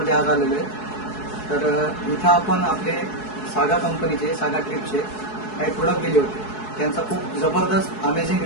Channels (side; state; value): right; late; 4.7 ms